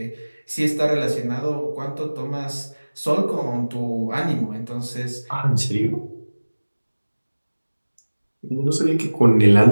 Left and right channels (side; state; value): both; inverted; correlation -1.00